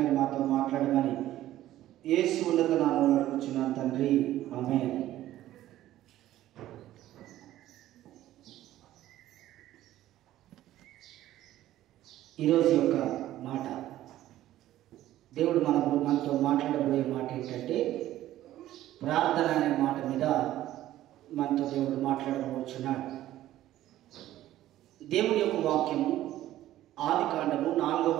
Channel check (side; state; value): left; quieter; 13.9 dB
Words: మీరు మాతో మాట్లాడమని యేసు ఉన్నత నామములో అడుగుచున్నాను తండ్రి, ఆమేన్. ఈరోజు యొక్క మాట, దేవుడు మనతో మాట్లాడబోయే మాట ఏంటంటే ప్రార్థన అనే మాట మీద మనతో దేవుడు మాట్లాడబోచున్నాడు. దేవుని యొక్క వాక్యము ఆదికాండము 4వ